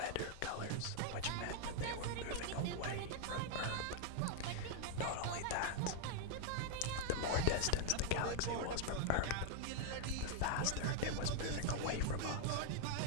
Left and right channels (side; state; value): both; different; correlation -0.01